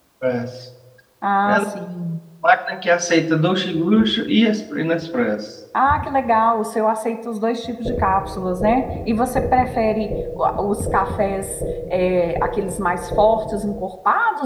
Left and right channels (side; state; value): both; identical; correlation 1.00